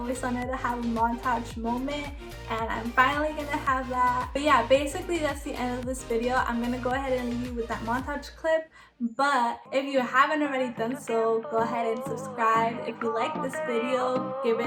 wanted to have a montage moment, and I'm finally gonna have that. But yeah, basically that's the end of this video. I'm gonna go ahead and leave you with that montage clip, but if you haven't already done so, go ahead and subscribe. If you like this video, give it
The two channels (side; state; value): both; identical; correlation 1.00